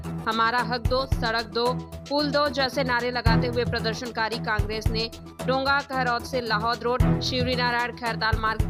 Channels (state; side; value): identical; both; correlation 1.00